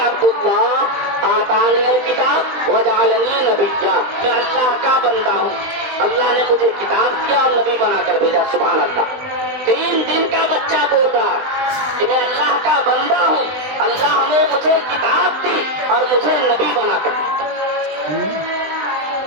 اللہ آتانی الکتاب وجعلنی نبیا. میں اللہ کا بندہ ہوں، اللہ نے مجھے کتاب دیا اور نبی بنا کر بھیجا. سبحان اللہ. 3 دن کا بچہ بول رہا ہے کہ میں اللہ کا بندہ ہوں، اللہ نے مجھے کتاب دی اور مجھے نبی بنا کر بھیجا.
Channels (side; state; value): left; late; 20 ms